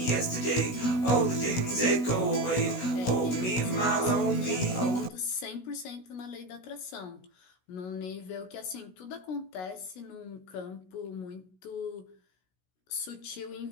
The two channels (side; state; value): right; late; 16 ms